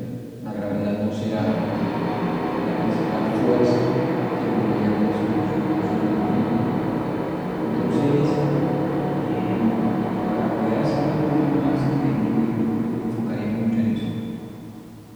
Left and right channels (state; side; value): identical; both; correlation 1.00